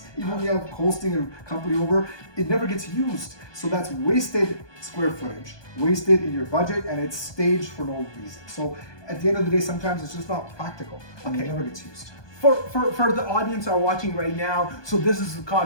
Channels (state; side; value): late; right; 1.2 ms